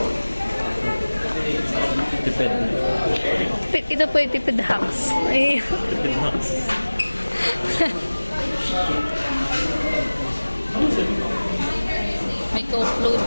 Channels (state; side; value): inverted; both; correlation -1.00